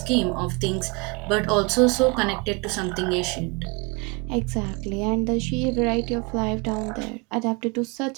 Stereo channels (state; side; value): quieter; left; 30.0 dB